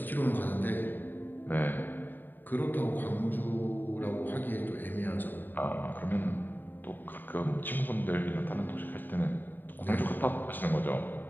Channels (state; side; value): late; right; 0.091 ms